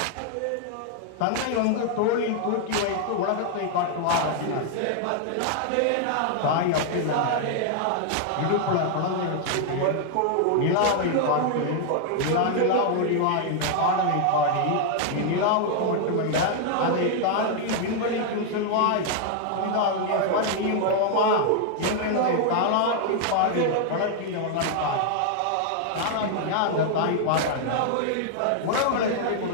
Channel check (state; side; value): different; both; correlation 0.00